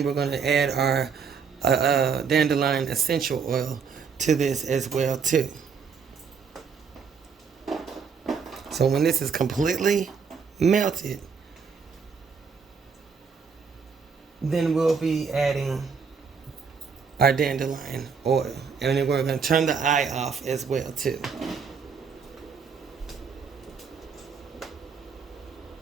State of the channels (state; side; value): quieter; left; 5.9 dB